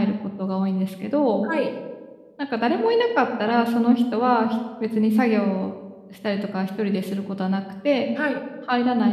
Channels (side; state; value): both; identical; correlation 1.00